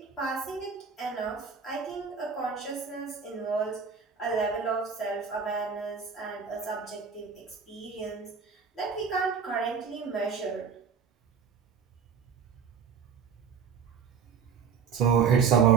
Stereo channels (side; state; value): left; quieter; 6.3 dB